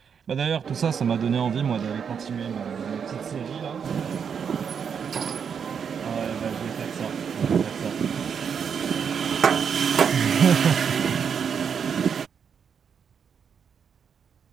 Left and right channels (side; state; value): left; quieter; 7.0 dB